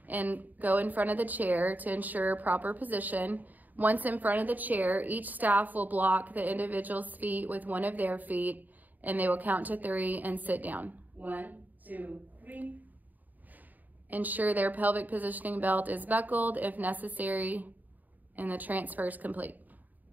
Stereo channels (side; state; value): left; late; 0.083 ms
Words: and go in front of the chair to ensure proper position. Once in front of the chair, each staff will block the individual's feet with one of their feet, and they will count to 3 and sit down. 1, 2, 3. Ensure their pelvic positioning belt is buckled if necessary, and the transfer is complete.